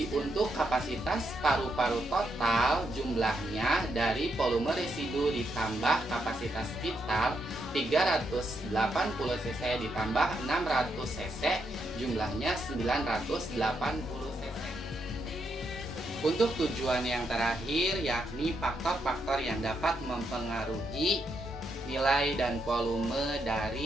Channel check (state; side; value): normal; both; correlation 0.80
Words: untuk kapasitas paru-paru total jumlahnya dari volume residu ditambah kapasitas vital 380 cc ditambah 600 cc jumlahnya 980 cc. Untuk tujuan yang terakhir yakni faktor-faktor yang dapat mempengaruhi nilai dan volume